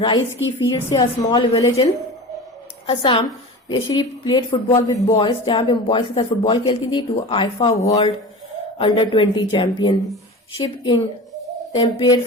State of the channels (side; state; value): both; normal; correlation 0.33